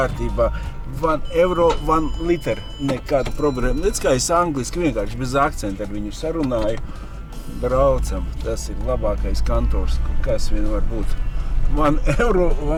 €1, 1 liter, nekāda problēma. Redz, kā es angliski vienkārši bez akcenta ar viņu sarunāju. Braucam, tas ir labākais kantors, kas vien var būt. €1,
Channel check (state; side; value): identical; both; correlation 1.00